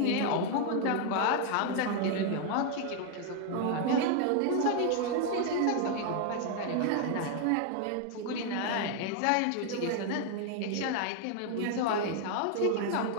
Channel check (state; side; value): different; both; correlation 0.00